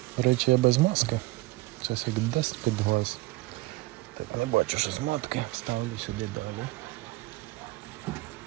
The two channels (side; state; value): left; quieter; 20.3 dB